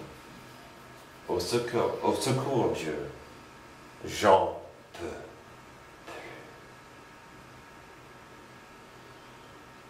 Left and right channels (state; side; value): identical; both; correlation 1.00